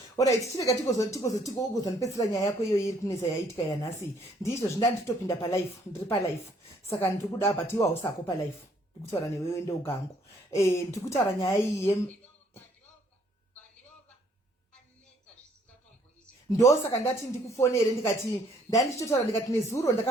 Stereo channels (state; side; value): normal; both; correlation 0.64